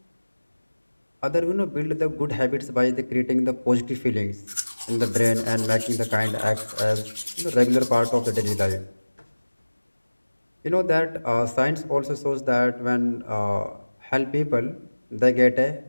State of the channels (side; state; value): both; inverted; correlation -1.00